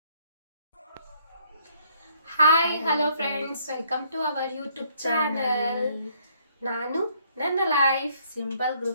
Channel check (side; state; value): both; inverted; correlation -0.66